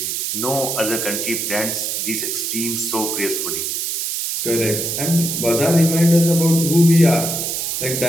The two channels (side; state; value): right; noise; hiss, 2 dB below the sound